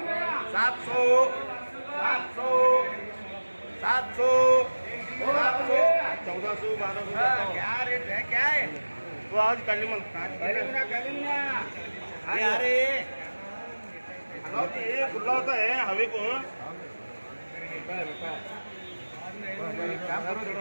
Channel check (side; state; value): both; inverted; correlation -1.00